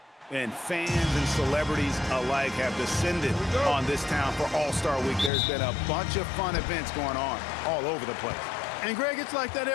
And fans and celebrities alike have descended on this town for All-Star Week. There's been a bunch of fun events going on all over the place. And, Greg, it's like that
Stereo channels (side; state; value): right; drops out; at 5.3 s